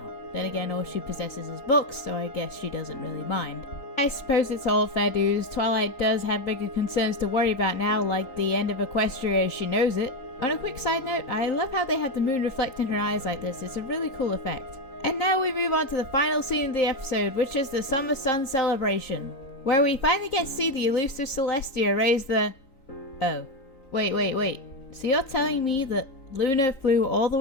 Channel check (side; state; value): right; late; 3.9 ms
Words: Then again, all she possesses is books, so I guess she doesn't really mind. I suppose it's all fair dues. Twilight does have bigger concerns to worry about now, like the end of Equestria as she knows it. On a quick side note, I love how they have the moon reflect in her eyes like this. It's a really cool effect. And now we move on to the final scene of the episode, which is the Summer Sun celebration, where we finally get to see the elusive Celestia raise the... Oh. Wait. So you're telling me that Luna flew all the